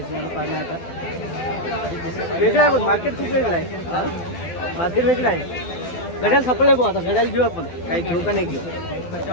पाहणं आता वेगळं आहे, पण मार्केट खूप वेगळं आहे. मार्केट वेगळं आहे. घड्याळ सापडलं भाऊ, आता घड्याळ घेऊ आपण. काही घेऊ का नाही घेऊ,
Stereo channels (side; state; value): right; late; 12 ms